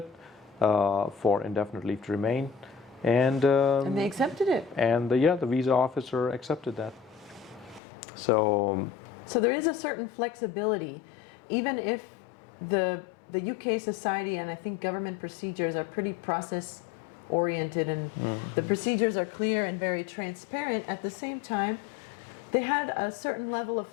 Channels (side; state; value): right; drops out; at 7.8 s